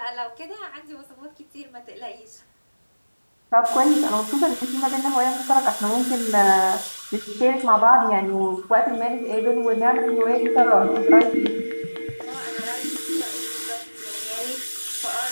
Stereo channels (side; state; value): both; inverted; correlation -1.00